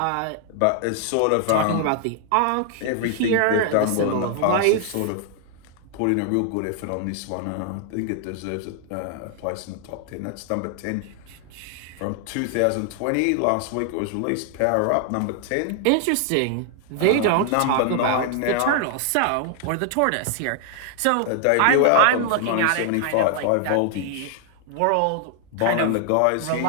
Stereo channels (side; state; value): both; different; correlation 0.00